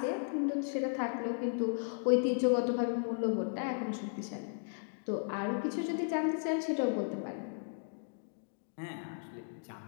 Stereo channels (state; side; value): silent; right; digital silence